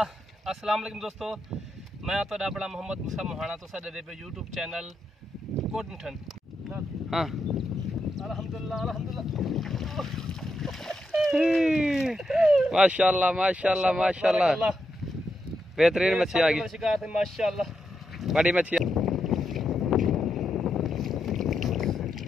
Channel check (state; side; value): normal; both; correlation 0.83